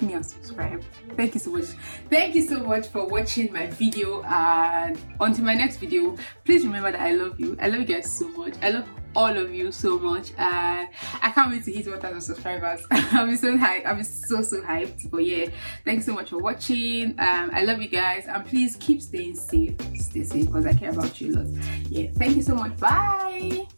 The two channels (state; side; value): inverted; both; correlation -1.00